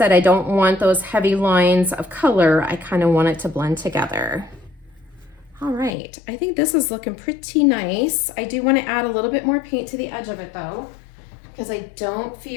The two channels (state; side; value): drops out; right; at 5.9 s